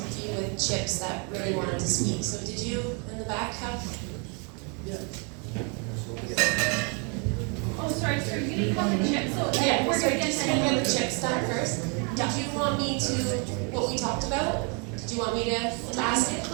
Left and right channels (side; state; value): left; quieter; 35.4 dB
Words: with chips that really wanted to speak. So did you in the back have? Oh, sorry, you didn't have the chips, so Yeah, we're gonna just get gonna get the chips done first. Did you want me to, what we talked about? Did you want me to ask it?